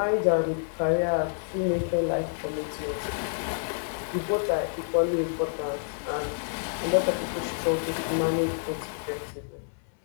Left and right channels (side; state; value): right; silent; 59 dB below the other